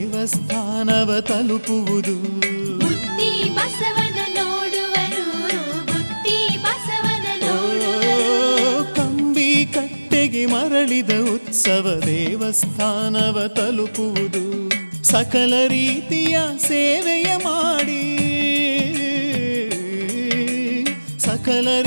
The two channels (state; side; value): inverted; both; correlation -1.00